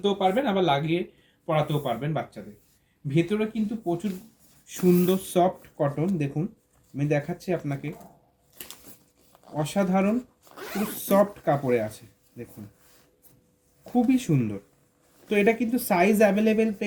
পারবেন, আবার লাগিয়ে পরাতেও পারবেন বাচ্চাদের। ভেতরে কিন্তু প্রচুর সুন্দর সফট কটন। দেখুন আমি দেখাচ্ছি আপনাকে, অসাধারণ পুরো সফট কাপড়ে আছে। দেখুন খুবই সুন্দর। তো এটা কিন্তু সাইজ অ্যাভেলেবেল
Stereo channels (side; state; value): both; identical; correlation 1.00